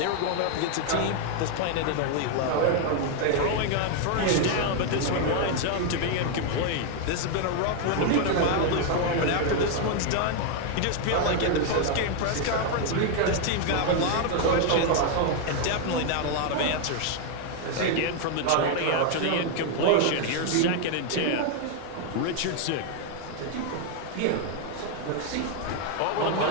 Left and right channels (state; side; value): different; both; correlation 0.00